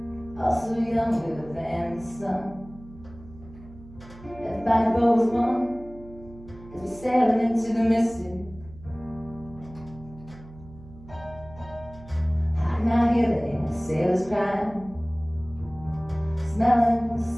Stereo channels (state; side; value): noise; right; hum, 19 dB below the sound